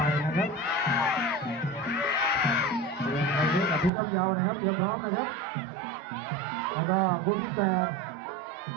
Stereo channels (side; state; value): left; drops out; at 3.9 s